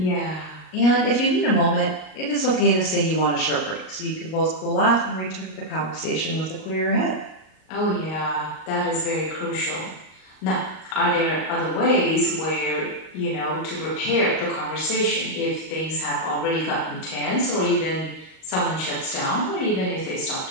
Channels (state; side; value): late; right; 38 ms